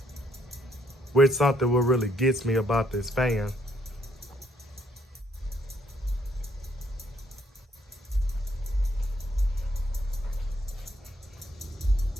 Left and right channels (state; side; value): normal; both; correlation 0.70